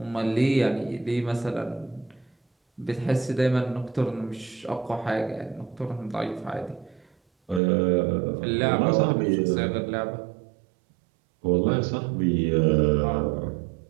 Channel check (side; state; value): left; drops out; at 7.6 s